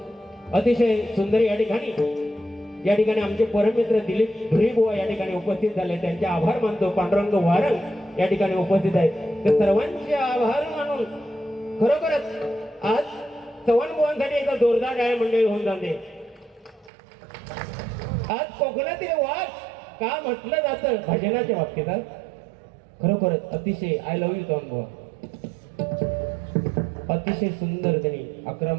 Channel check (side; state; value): left; drops out; at 16.9 s